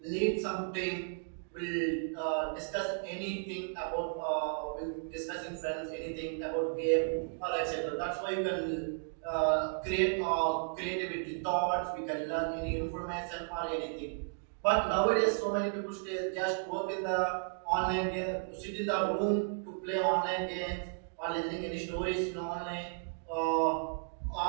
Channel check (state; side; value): silent; left; digital silence